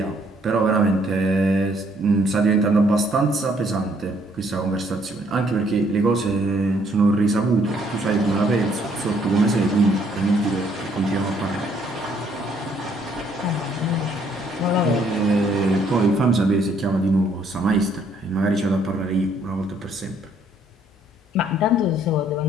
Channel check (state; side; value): normal; both; correlation 0.66